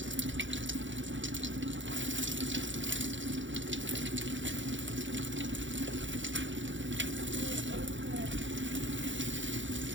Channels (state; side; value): late; left; 0.55 ms